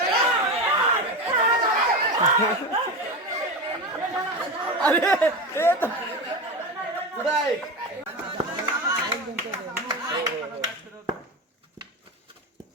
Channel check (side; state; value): both; normal; correlation 0.21